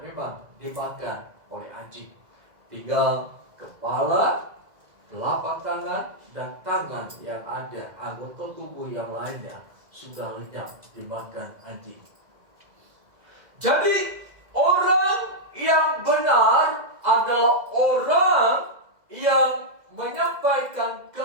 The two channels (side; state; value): left; late; 2.0 ms